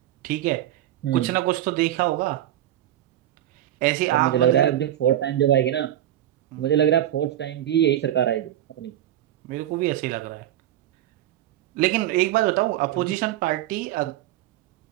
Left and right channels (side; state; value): left; quieter; 12.6 dB